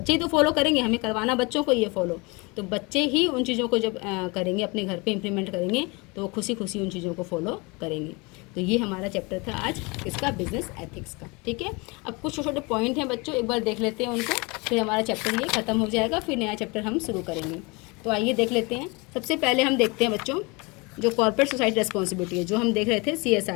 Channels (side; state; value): right; quieter; 27.4 dB